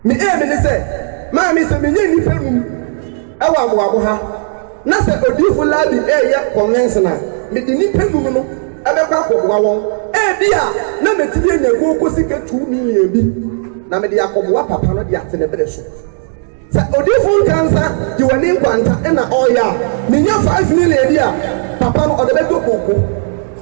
Me say, Mammy, some million our Wabuha. Nasa odifu labi ya conventional. Me di ni penu no abekwa akobwa won. Bia na metibi enyago kosika 2 million bi. Na me di akobwa papa no di atene bere so. Sa odifu kansa di wani nkwanta na oya. Me nya 5 million dia. Papa no odebeto koko.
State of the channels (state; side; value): silent; left; digital silence